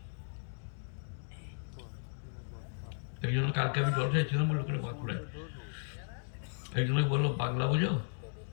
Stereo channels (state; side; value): silent; right; digital silence